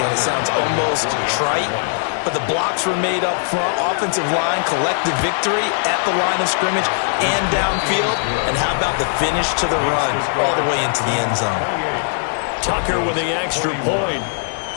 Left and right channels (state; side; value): silent; right; digital silence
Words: it sounds almost trite, but the blocks were made up front, offensive line, collective victory at the line of scrimmage and downfield. And how about the finish to the run all the way into the end zone? Tucker with the extra point.